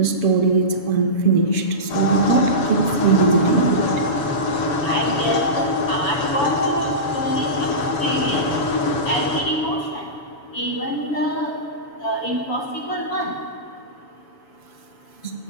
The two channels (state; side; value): late; right; 7.1 ms